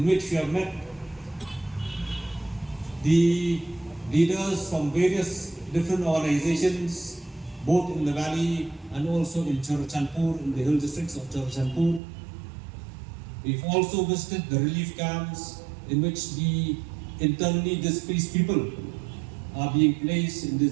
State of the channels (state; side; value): drops out; left; at 12.0 s